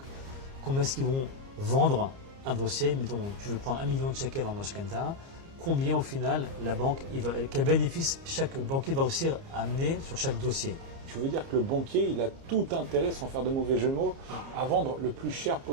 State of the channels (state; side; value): late; left; 30 ms